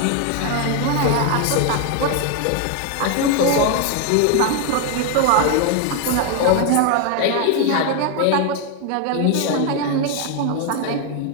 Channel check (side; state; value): both; different; correlation 0.01